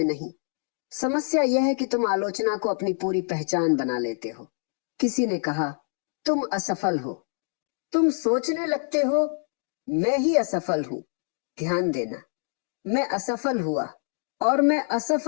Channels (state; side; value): silent; right; 61 dB below the other